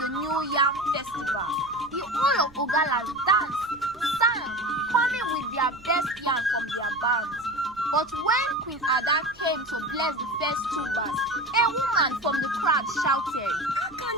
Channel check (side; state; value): right; noise; rumble, 25 dB below the sound